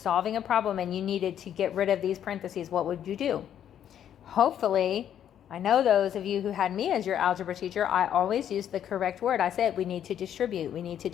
solving a problem and you needed to get rid of these parentheses? What would you do? Hopefully, I know those of you who had me as your algebra teacher, I always used the correct word. I said we need to distribute. We need to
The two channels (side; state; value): right; quieter; 9.9 dB